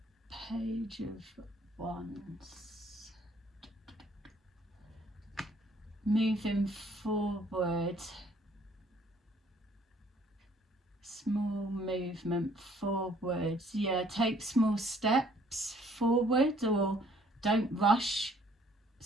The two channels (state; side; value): normal; both; correlation 0.61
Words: Page of Wands. Moving forward. Small movement forwards. Yeah, take small steps forward, or don't rush